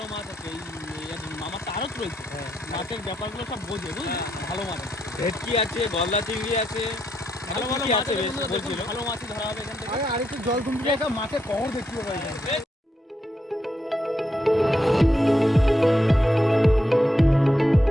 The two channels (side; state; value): both; normal; correlation 0.81